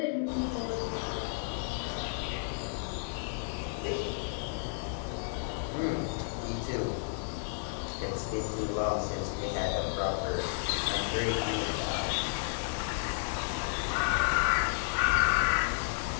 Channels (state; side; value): silent; right; digital silence